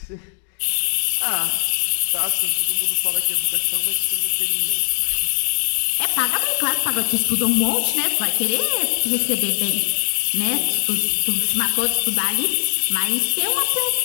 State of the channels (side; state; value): right; silent; 66 dB below the other